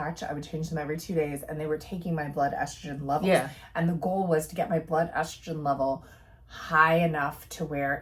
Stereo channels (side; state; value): both; identical; correlation 1.00